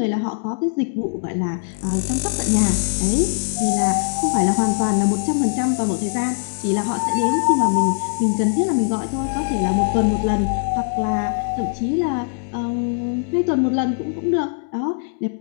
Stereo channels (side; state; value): right; silent; digital silence